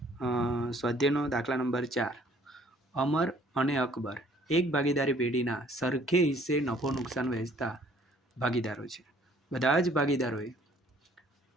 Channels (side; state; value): both; normal; correlation 0.59